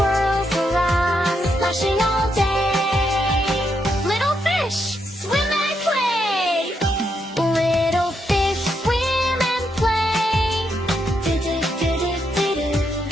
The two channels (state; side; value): normal; both; correlation 0.80